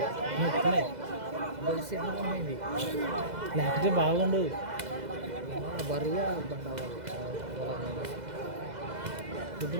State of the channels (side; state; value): left; late; 2.0 ms